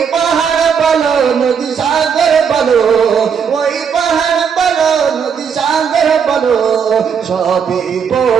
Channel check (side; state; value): left; quieter; 6.9 dB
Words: পাহাড় বলো নদী সাগর বলো, ওই পাহাড় বলো নদী সাগর বলো, সবই